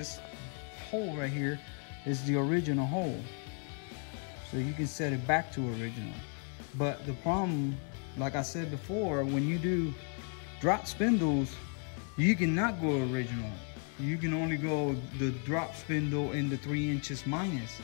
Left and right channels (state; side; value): quieter; right; 39.4 dB